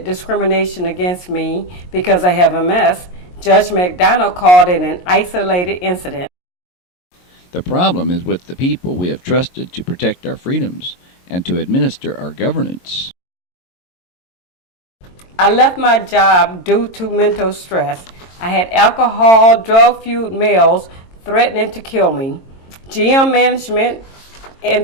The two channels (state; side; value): late; right; 22 ms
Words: discrimination against me because I have MS, Judge McDonald called it an isolated incident. The problem is with the people we have trusted to protect our freedoms and to administer our governance. I left my job due to mental stress. I had alcohol, drug-fueled males threatening to kill me. GM management and